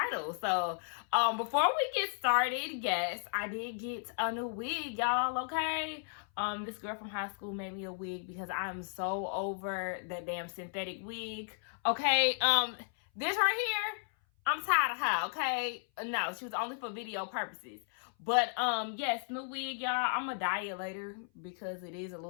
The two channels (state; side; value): silent; right; 55 dB below the other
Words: So, before we get started, yes, I did get a new wig, y'all, okay? This girl from high school made me a wig because I'm so over that damn synthetic wig, okay? This right here, I'm tired of her, okay? No, she was only for video purposes. But, yes, new wig, y'all. I'm gonna dye it later because it is a little